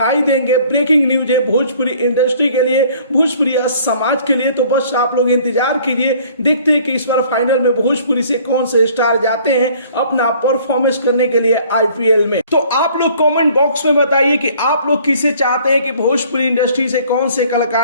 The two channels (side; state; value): both; inverted; correlation -0.55